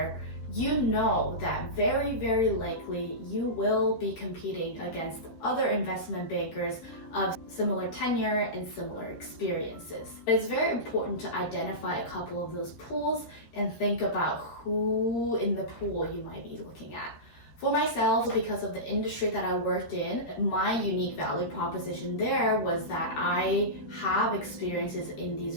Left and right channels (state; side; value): late; right; 13 ms